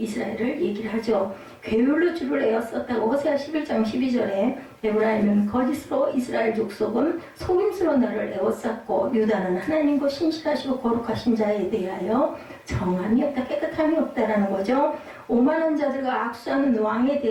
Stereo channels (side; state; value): both; identical; correlation 1.00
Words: 얘기를 하죠. 괴율로 주를 에었었다고 호세아 11장 12절에 에브라임은 거짓으로 이스라엘 족속은 속임수로 나를 에워쌌고 유다는 하나님과 신실하시고 거룩하신 자에 대하여 정함이 없다, 깨끗함이 없다라는 거죠. 오만한 자들과 악수하는 왕에